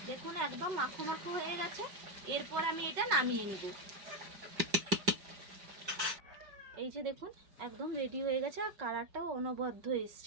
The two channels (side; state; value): left; late; 5.3 ms